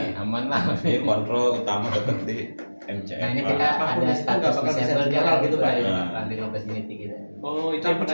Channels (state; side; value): inverted; both; correlation -1.00